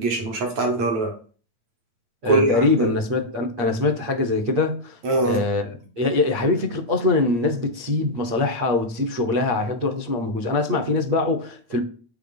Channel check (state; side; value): late; left; 8.5 ms